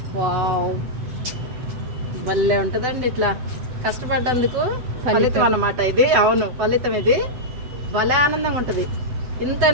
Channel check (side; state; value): left; late; 8.0 ms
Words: వావ్, భలే ఉంటదండి ఇట్లా కష్టపడ్డందుకు ఫలితం అన్నమాట ఇది. అవును, ఫలితం ఇది. భలే ఆనందంగా ఉంటది. ఇంత